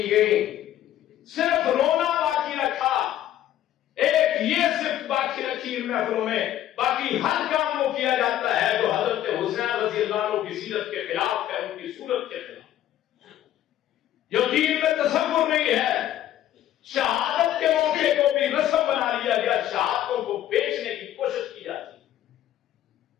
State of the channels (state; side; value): quieter; right; 12.2 dB